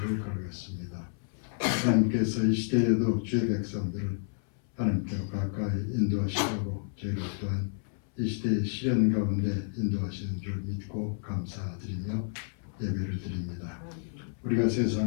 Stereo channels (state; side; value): silent; right; 58 dB below the other